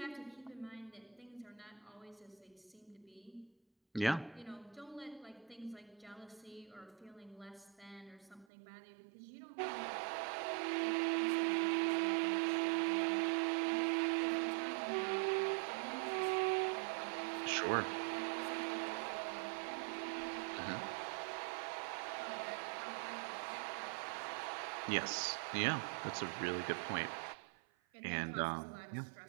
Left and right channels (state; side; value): drops out; left; at 8.5 s